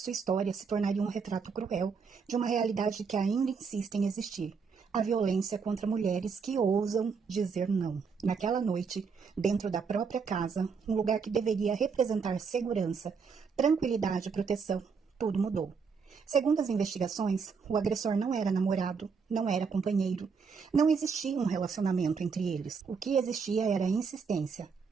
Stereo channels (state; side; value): quieter; left; 5.6 dB